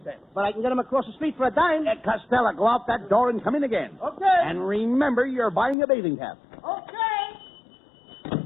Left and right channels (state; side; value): drops out; right; at 5.8 s